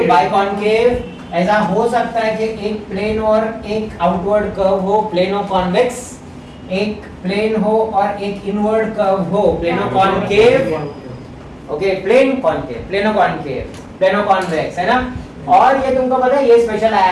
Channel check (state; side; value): identical; both; correlation 1.00